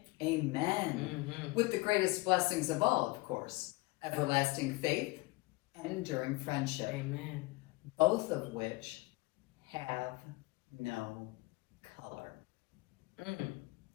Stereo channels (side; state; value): right; quieter; 22.8 dB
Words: Amen. With the greatest blessings of all, of course, everlasting faith and enduring friendship, Amen. both of which have no color.